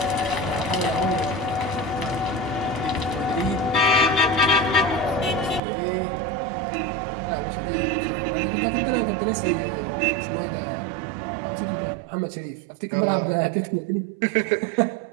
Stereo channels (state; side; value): drops out; left; at 5.6 s